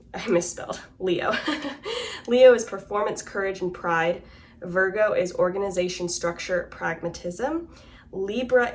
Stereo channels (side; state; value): both; identical; correlation 1.00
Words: misspelled. Leo. Leo is performance, courage, and pride. Virgo is organization, structure, pragmatism. Libra